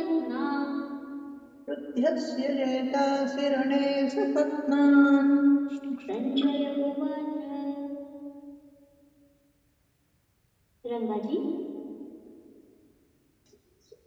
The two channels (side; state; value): both; identical; correlation 1.00